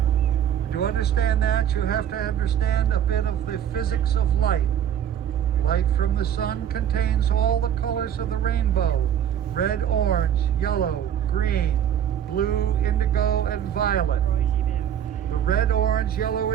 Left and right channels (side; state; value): left; quieter; 9.7 dB